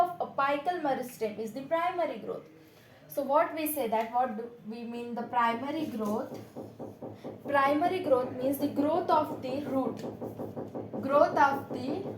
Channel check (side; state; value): both; identical; correlation 1.00